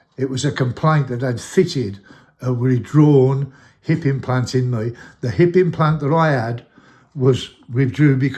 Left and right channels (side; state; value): both; identical; correlation 1.00